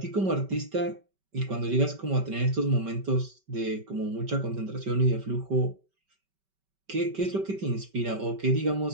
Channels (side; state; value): left; late; 5.2 ms